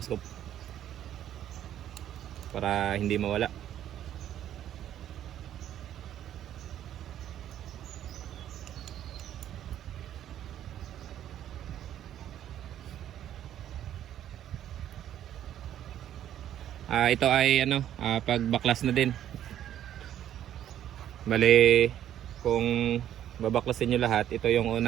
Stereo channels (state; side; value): quieter; left; 11.2 dB